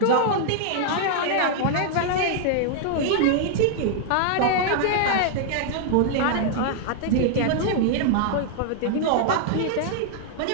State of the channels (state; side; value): different; both; correlation -0.01